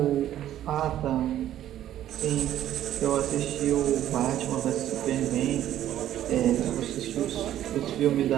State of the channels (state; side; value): quieter; left; 12.0 dB